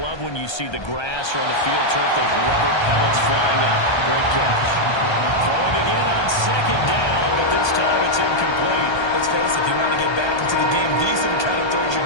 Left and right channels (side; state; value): right; late; 1.3 ms